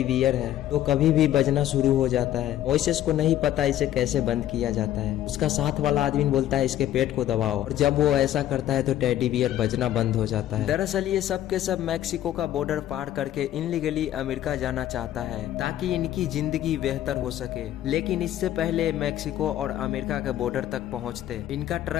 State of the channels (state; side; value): quieter; right; 12.3 dB